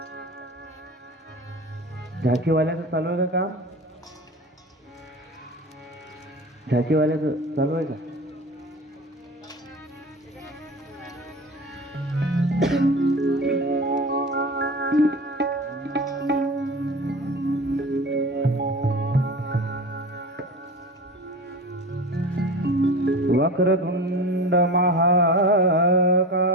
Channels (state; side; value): normal; both; correlation 0.33